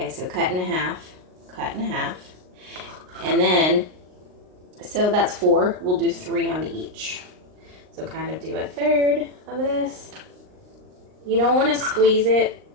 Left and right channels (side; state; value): left; late; 38 ms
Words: so cut in half, and then, so that's 4. We'll do 3 on each. So kind of do a third of this. You don't want to squeeze it